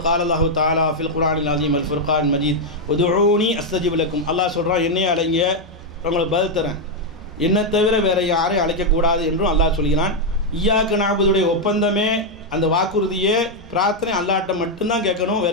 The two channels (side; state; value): both; normal; correlation 0.01